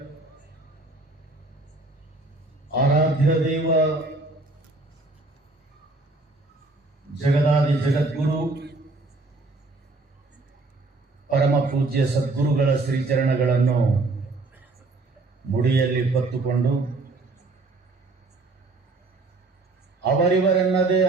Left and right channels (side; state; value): left; quieter; 3.2 dB